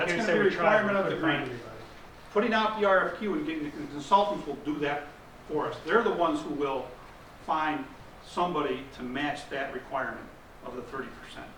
a we requirement of the couldn't find grant. anybody. putting out the RFQ and getting the consultants will do that for us. They're the ones who will find somebody to match that requirement of the 30%.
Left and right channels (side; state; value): both; identical; correlation 1.00